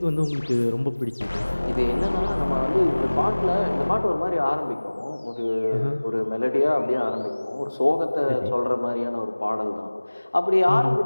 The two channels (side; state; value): both; inverted; correlation -1.00